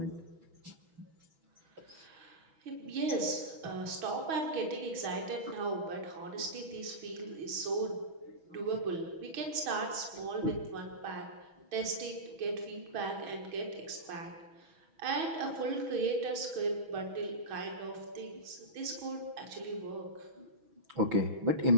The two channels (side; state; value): left; late; 6.2 ms